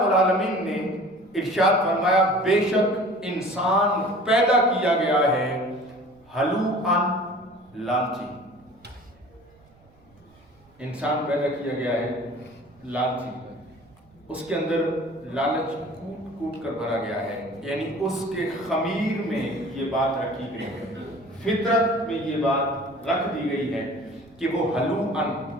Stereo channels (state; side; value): noise; right; rumble, 30 dB below the sound